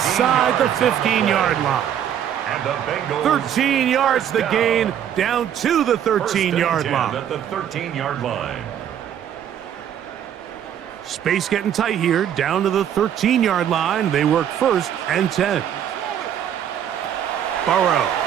the 15-yard line. And the Bengals 13 yards the gain, down to the 13-yard line. At the 13-yard line. Space getting tight here, down to the 13-yard line. They work 1st and 10. Burrow.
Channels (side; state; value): left; quieter; 9.7 dB